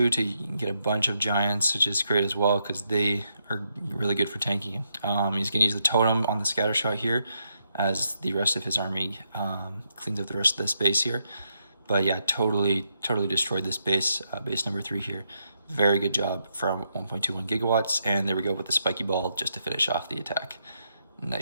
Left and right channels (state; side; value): inverted; both; correlation -0.80